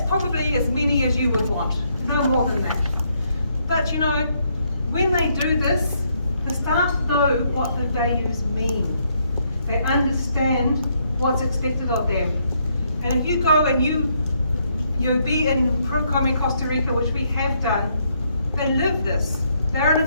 probably as many as you would want, no more than that. But you know, when they do this, the staff know what the values mean. They understand what's expected of them. And if you go and you be in Procom Costa Rica, which we have done, they live this. They're an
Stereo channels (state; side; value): inverted; both; correlation -0.73